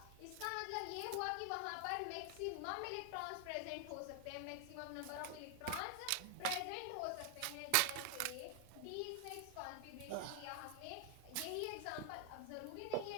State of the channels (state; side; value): different; both; correlation 0.00